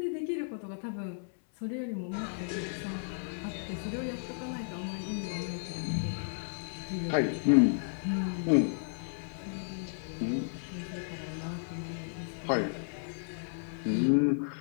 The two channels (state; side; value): silent; right; 56 dB below the other